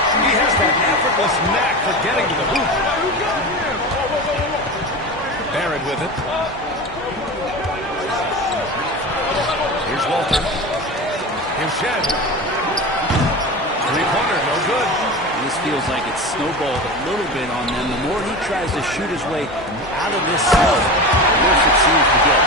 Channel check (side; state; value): both; normal; correlation 0.28